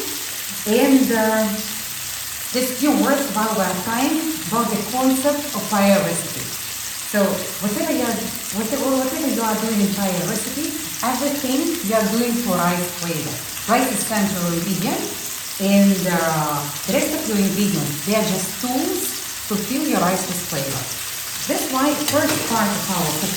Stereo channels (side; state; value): both; identical; correlation 1.00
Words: And just few words while we're frying about the concept of paella recipe. So whatever you are doing in paella recipe, everything you are doing for rice flavor. Rice is central ingredient, and the rest of your ingredients, they are just tools to fill your rice with flavor. That's why first part of our